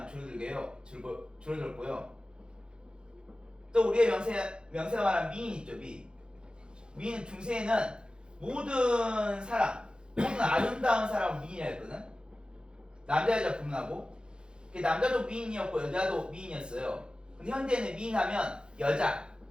줄어들고요. 또 우리의 명세가 말한 미인 있죠, 미. 미인 중세에는 모든 사람, 모든 아름다운 사람을 미인이라 했거든. 남자 여자 구분하고. 남자도 미인이었고 여자도 미인이었어요. 근데 현대에는 미인하면 여자,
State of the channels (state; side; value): late; left; 0.050 ms